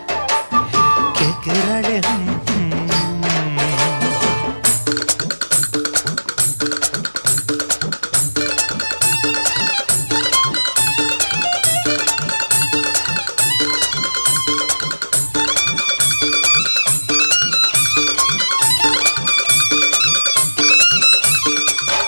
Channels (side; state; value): both; inverted; correlation -1.00